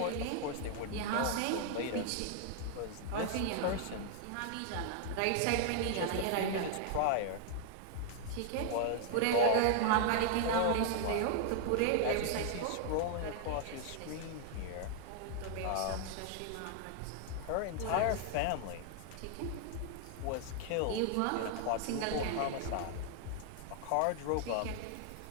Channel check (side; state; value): both; different; correlation 0.00